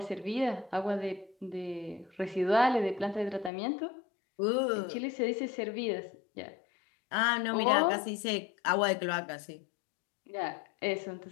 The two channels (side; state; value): right; drops out; at 3.5 s